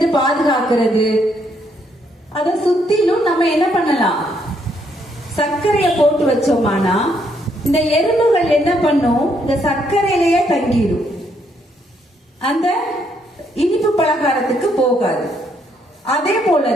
பாதுகாக்கிறது, அத சுத்திலும் நம்ம என்ன பண்ணலாம், சர்க்கரைய போட்டு வச்சோமானா இந்த எறும்புகள் என்ன பண்ணும், இந்த சர்க்கரையிலேயே தங்கிடும். அந்த இனிப்பு பலகாரத்துக்கு போகாது. அதே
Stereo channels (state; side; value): normal; both; correlation 0.72